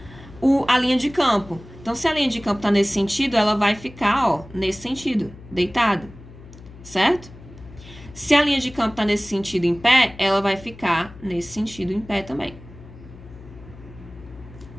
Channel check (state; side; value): noise; left; hum, 19 dB below the sound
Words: a linha de campo. Então, se a linha de campo está nesse sentido, ela vai ficar, ó, nesse sentido, deitado, certo? Se a linha de campo está nesse sentido em pé, ela vai ficar nesse sentido em pé também.